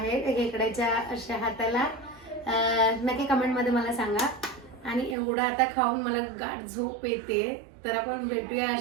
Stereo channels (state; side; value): drops out; left; at 5.2 s